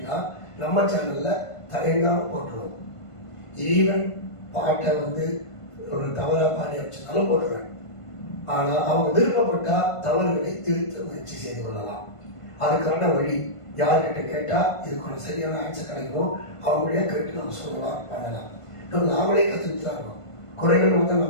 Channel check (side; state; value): right; late; 1.5 ms